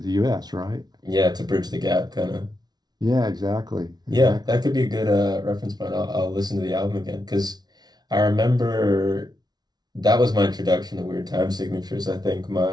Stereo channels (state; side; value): late; left; 0.19 ms